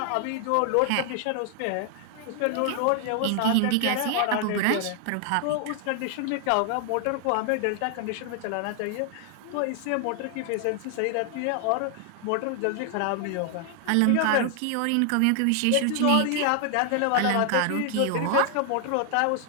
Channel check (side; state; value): both; different; correlation 0.00